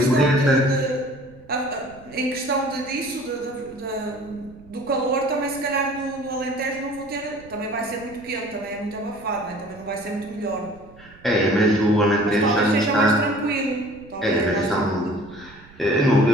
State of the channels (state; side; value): noise; right; rumble, 23 dB below the sound